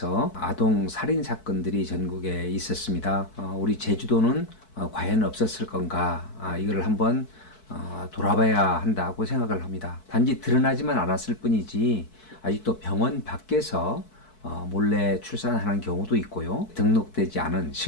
아동 살인 사건들이 전국에 있었습니다. 우리 제주도는 과연 없었을 건가? 이걸 한번 돌아봐야 한다고 생각을 합니다. 단지 드러나지만 않았을 뿐이지 아직도 병원 밖에서 몰래 출산하는 경우도 있고요. 등록되지 않은,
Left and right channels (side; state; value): right; late; 4.6 ms